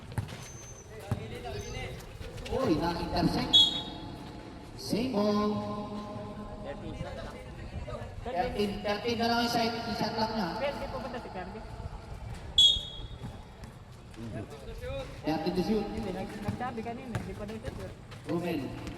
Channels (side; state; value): both; identical; correlation 1.00